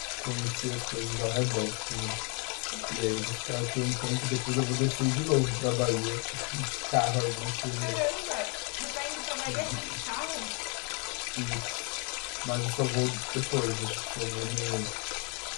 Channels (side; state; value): right; quieter; 35.5 dB